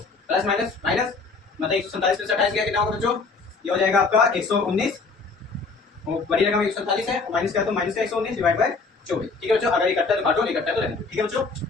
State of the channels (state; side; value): quieter; right; 4.3 dB